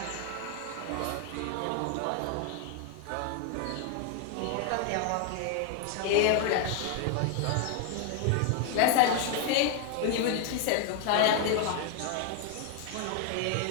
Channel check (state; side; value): different; both; correlation 0.00